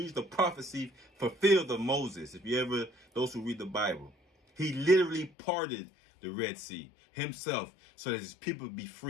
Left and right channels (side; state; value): right; drops out; at 5.3 s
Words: prophecy fulfilled of Moses. If you ever, those who read the Bible, he literally parted the Red Sea himself so that his people would be